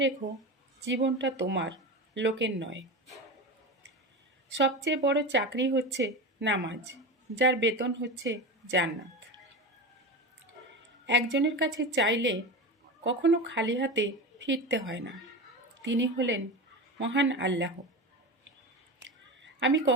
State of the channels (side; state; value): both; normal; correlation 0.25